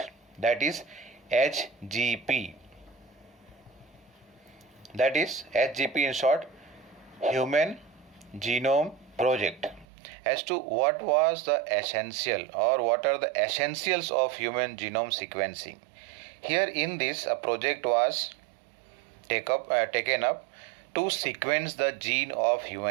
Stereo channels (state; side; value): drops out; left; at 9.9 s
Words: that is HGP. that is HGP in short, Human Genome Project, as to what was the essential or what are the essentials of human genome sequencing. Here in this, a project was taken up to sequence the gene of